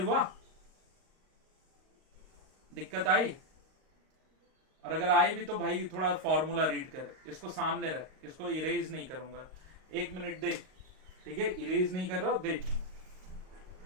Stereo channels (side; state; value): left; late; 38 ms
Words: दिक्कत आई? और अगर आई भी तो भाई थोड़ा फॉर्मूला रीड कर, इसको सामने रख, इसको इरेज नहीं करूंगा, 1 मिनट देख, ठीक है, इरेज नहीं कर रहा हूं, देख।